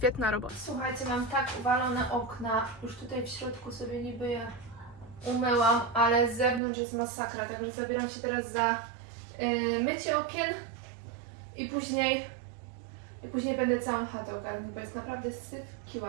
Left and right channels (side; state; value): left; drops out; at 6.6 s